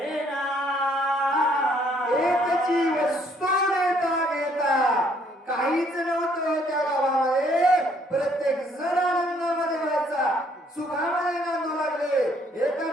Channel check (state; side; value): normal; both; correlation 0.65